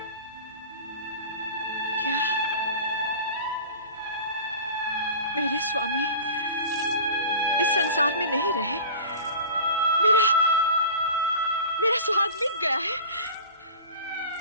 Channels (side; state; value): both; inverted; correlation -0.36